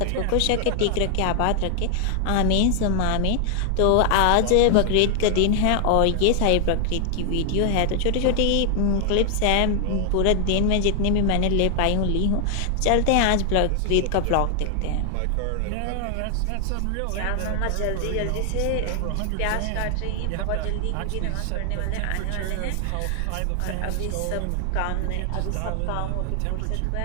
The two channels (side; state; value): both; different; correlation 0.00